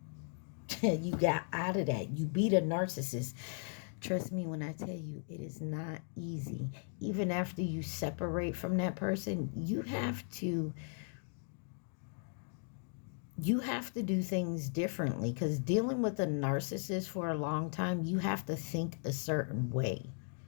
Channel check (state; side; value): silent; right; 53 dB below the other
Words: got out of that. You beat a narcissist. Trust me when I tell you, it is not easy. Even after you separate from that person, you have to do things differently, because dealing with a narcissist for a long time, you have to think a certain way.